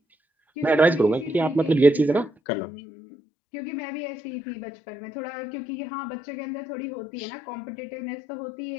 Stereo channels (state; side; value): drops out; right; at 2.3 s